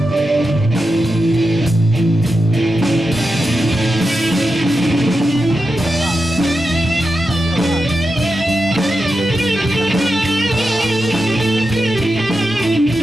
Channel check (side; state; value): both; normal; correlation 0.89